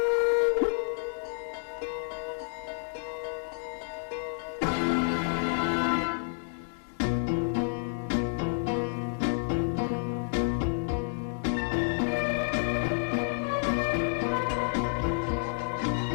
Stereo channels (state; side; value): silent; right; 58 dB below the other